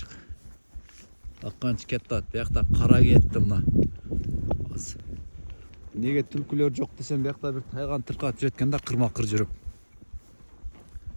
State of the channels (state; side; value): inverted; both; correlation -1.00